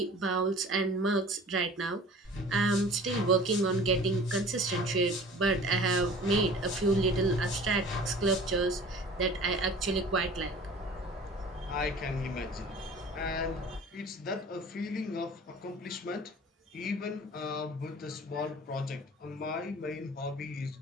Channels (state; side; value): normal; both; correlation 0.44